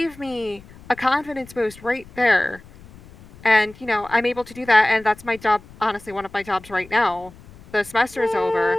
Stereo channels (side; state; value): left; noise; rumble, 22 dB below the sound